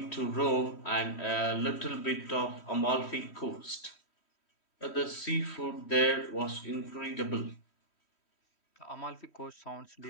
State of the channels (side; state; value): right; late; 3.1 ms